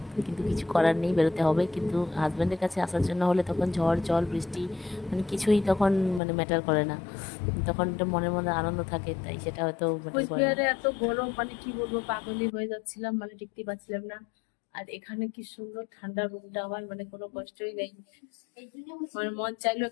কিন্তু কিছু করার নেই, বেরোতে হবে। কিন্তু হাজব্যান্ডের কাছে আসার জন্য হলে তখন ঝড় জল বৃষ্টি মানে কিছুই তখন মানে ম্যাটার করে না, তখন একটা মনের মধ্যে আনন্দ থাকে, তাই সেটা হয়তো ম্যাটার করে না। কোচবিহারে এত গরম, মানে কি বলবো, পাগলই হয়ে যাচ্ছিলাম, মানে টিকতে পারছিলাম না। আর এখানে কি সুন্দর ঠান্ডা রুমটা, আমার মানে কোনো কষ্টই নেই। আমার মন চাইলো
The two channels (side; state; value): right; drops out; at 6.2 s